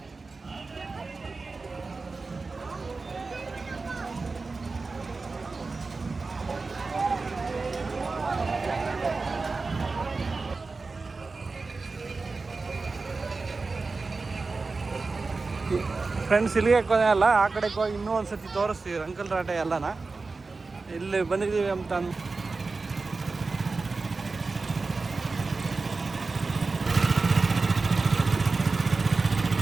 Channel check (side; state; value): left; quieter; 4.0 dB